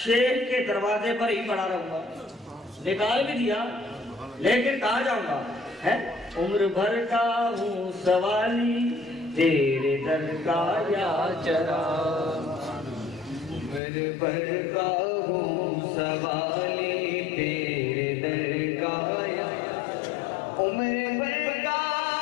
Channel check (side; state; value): right; drops out; at 13.8 s